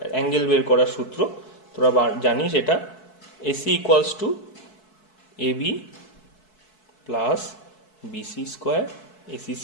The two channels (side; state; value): right; late; 4.6 ms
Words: angle বের করার সূত্র তোরা জানিস এটা। AC equals to AB plus BC square, AC